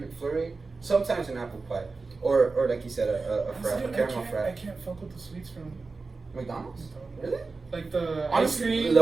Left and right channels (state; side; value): quieter; left; 4.0 dB